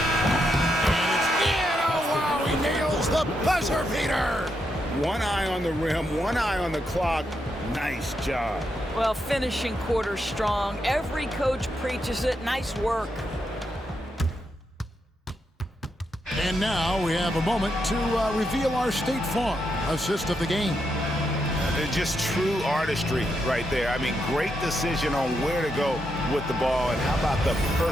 it's in. Oh, wow, he nails the buzzer beater. One eye on the rim, one eye on the clock. Nice job. Well, finishing quarter strong. Every coach preaches it. Nice work. And now we have a moment to reveal our State Farm assist of the game. Just true artistry right there. I mean, great decision on where to go with the ball, and how about the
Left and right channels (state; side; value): normal; both; correlation 0.82